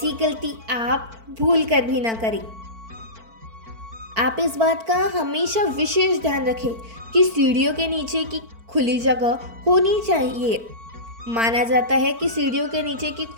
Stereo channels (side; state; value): left; late; 4.5 ms